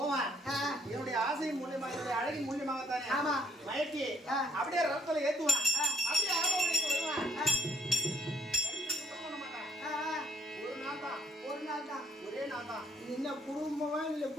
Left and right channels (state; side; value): normal; both; correlation 0.68